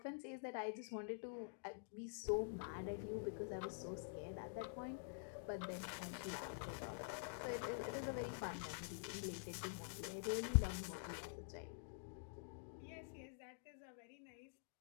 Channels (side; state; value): right; silent; digital silence